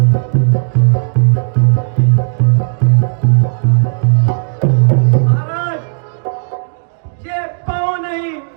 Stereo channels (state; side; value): silent; left; digital silence